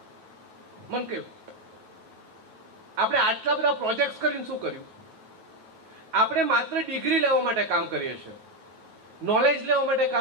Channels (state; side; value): late; left; 9.3 ms